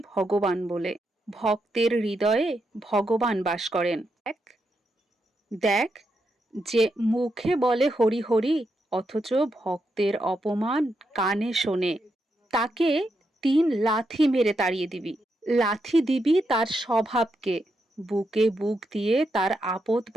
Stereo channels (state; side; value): normal; both; correlation 0.83